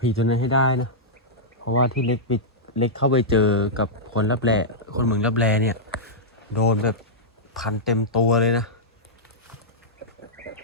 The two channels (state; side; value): normal; both; correlation -0.10